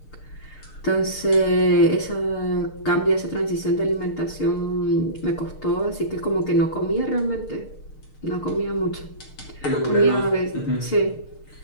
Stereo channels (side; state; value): right; late; 6.6 ms